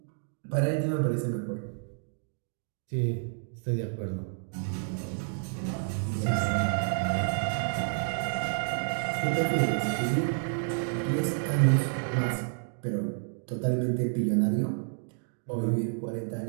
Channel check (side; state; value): left; silent; digital silence